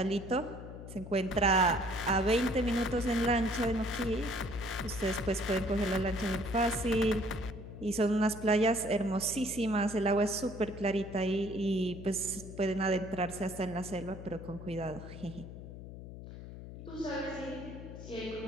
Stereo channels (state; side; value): noise; left; hum, 12 dB below the sound